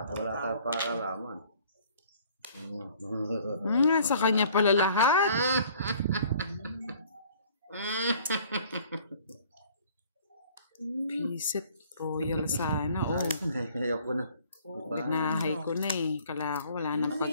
wala kang pakalaman? Sa kanya pala lahat. Pisit. Royal sana. Oh, Ayoko na. binahay ko na eh. Kala ko wala nang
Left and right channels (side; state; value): both; inverted; correlation -0.55